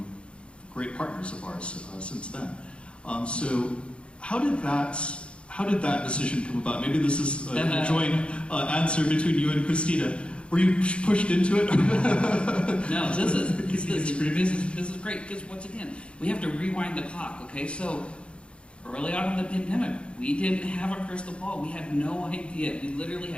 great partners of ours since then. So how did that decision come about? Maybe this is a joint answer between you and Christina. Were you pushed into it? No, this is great, because once again, we have to rewind the clock, okay? So early on in the pandemic, we didn't have a crystal ball. We had no idea. We literally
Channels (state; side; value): late; right; 0.058 ms